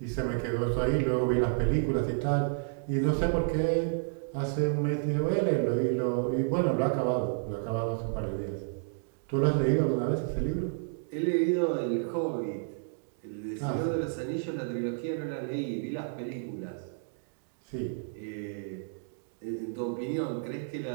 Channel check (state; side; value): silent; left; digital silence